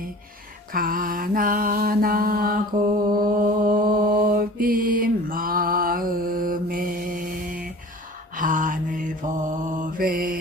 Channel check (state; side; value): normal; both; correlation 0.42